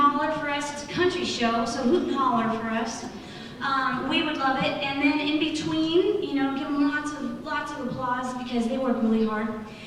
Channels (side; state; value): both; identical; correlation 1.00